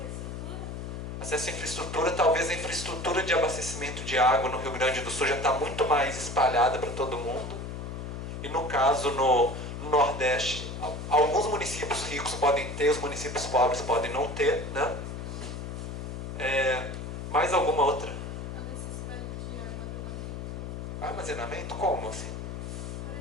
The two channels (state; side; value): noise; left; hum, 7 dB below the sound